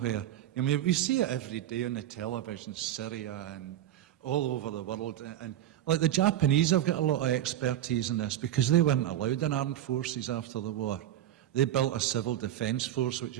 I mean, we see it every day on the television, Syria and all over the world. And like the Japanese have got a lot of expertise in this because they weren't allowed in armed forces after the war. They built a civil defence force, which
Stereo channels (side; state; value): left; quieter; 12.1 dB